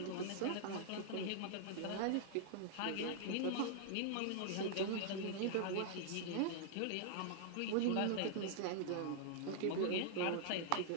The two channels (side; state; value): both; different; correlation -0.01